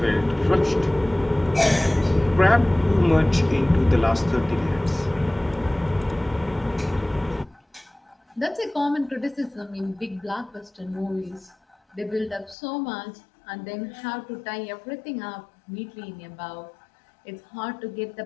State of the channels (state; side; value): drops out; right; at 12.6 s